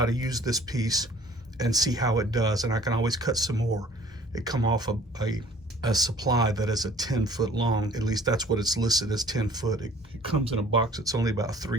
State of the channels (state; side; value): normal; both; correlation 0.53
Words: to use this piece and see how it does, and I can always cut some more. It come off a supply that is a 10-foot long. At least that's what it's listed as, 10 foot. It comes in a box that's only about